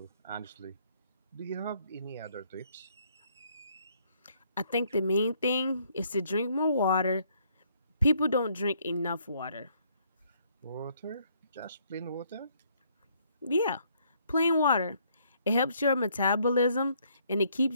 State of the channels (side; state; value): both; inverted; correlation -0.67